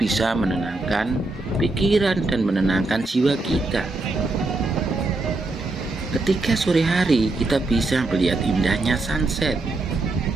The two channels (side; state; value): left; quieter; 3.1 dB